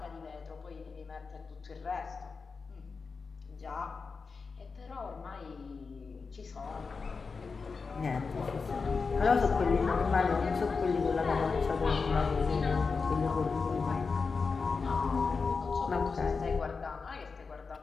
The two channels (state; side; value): quieter; right; 4.8 dB